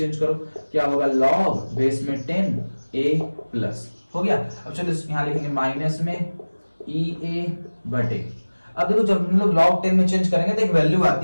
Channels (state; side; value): inverted; both; correlation -1.00